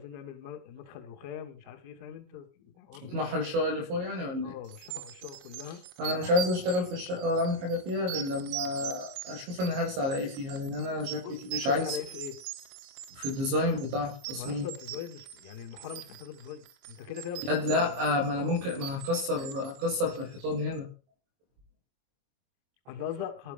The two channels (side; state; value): left; late; 22 ms